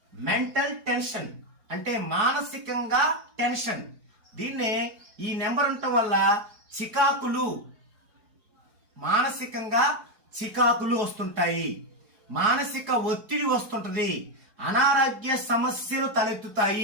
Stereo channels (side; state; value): left; late; 4.7 ms